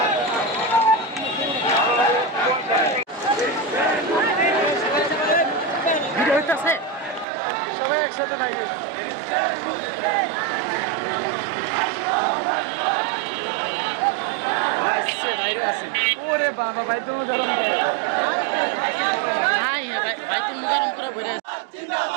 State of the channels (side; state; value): left; drops out; at 7.2 s